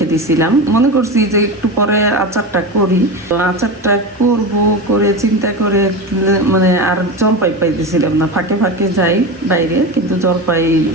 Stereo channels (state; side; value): normal; both; correlation 0.23